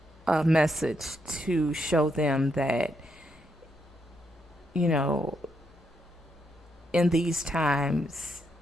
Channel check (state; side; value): normal; both; correlation 0.79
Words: message to show them that, you know, in these times,